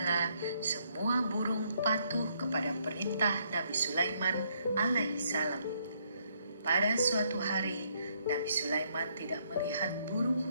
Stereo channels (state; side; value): inverted; both; correlation -0.71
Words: semua burung patuh kepada perintah Nabi Sulaiman alaihissalam. Pada suatu hari, Nabi Sulaiman tidak melihat burung